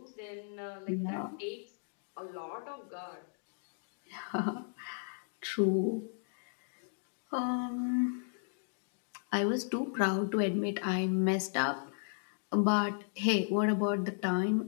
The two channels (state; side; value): silent; right; digital silence